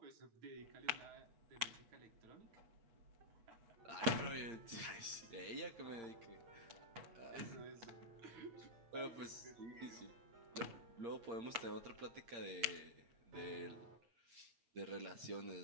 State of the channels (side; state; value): left; late; 8.3 ms